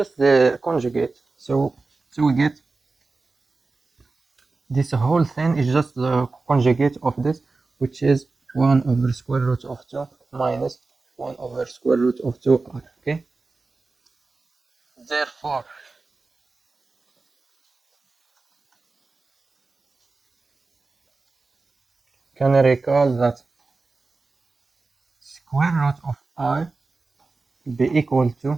the conjugate, so we get this whole thing is just the conjugate of this, which is 1 over square root of 2 minus 1 over square root of 2r. Okay, therefore can I recall that square root of I will be equal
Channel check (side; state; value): left; quieter; 3.8 dB